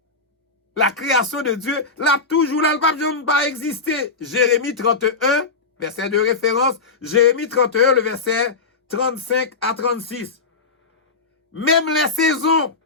La création de Dieu, là, toujours là, le pape pas exister. Jérémie 31, verset de référence, Jérémie 31, le verset 35 à 36. Même les saisons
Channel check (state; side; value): quieter; right; 4.1 dB